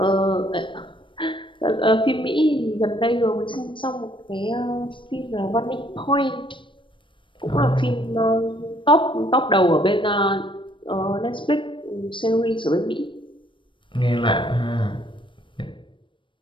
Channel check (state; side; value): late; right; 0.24 ms